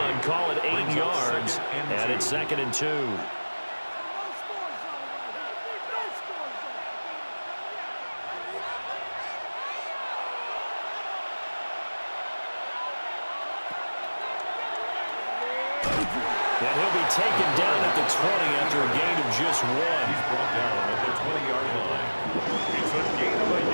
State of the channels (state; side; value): inverted; both; correlation -1.00